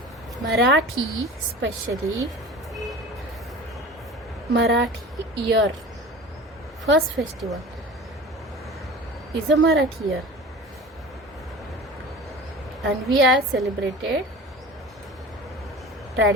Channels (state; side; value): normal; both; correlation 0.37